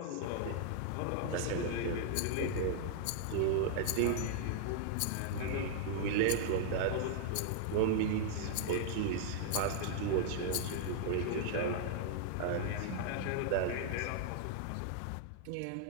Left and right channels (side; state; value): both; different; correlation -0.01